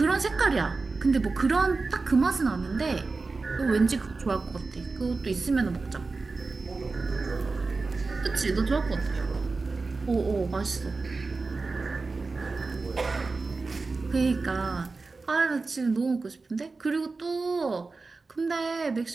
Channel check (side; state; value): left; quieter; 3.9 dB